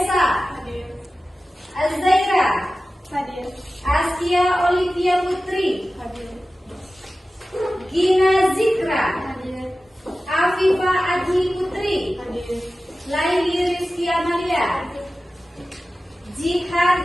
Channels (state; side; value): normal; both; correlation 0.95